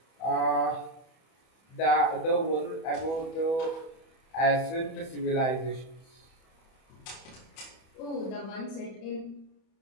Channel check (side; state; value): right; late; 31 ms